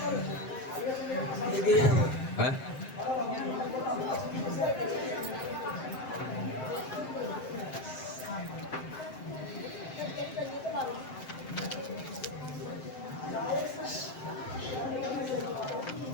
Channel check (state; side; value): late; right; 7.7 ms